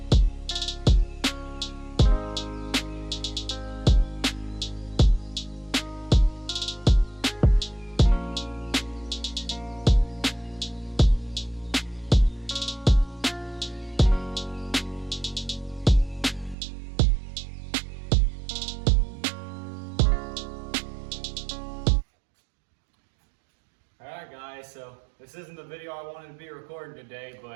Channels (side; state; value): left; drops out; at 16.6 s